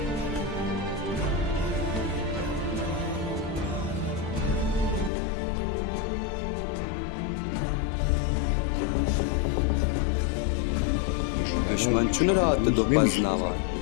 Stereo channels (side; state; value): right; drops out; at 5.1 s